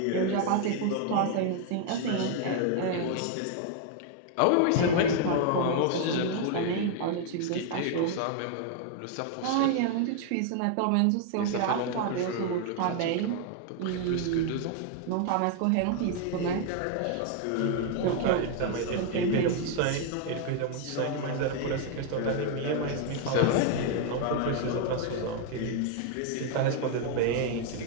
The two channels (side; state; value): both; different; correlation 0.00